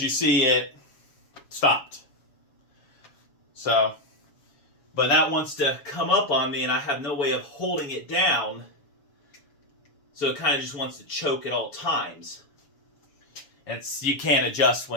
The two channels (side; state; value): right; late; 7.1 ms